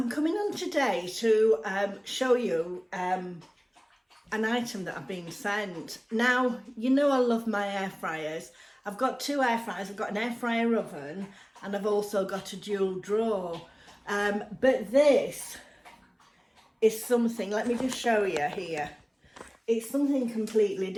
coming on today to show you an item that I've been sent. Now, you know I love my air fryers. I've got two air fryers. I've got an air fryer oven and I've also got a dual drawer. But this is something, let me just show you here. It's something completely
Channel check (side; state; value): both; identical; correlation 1.00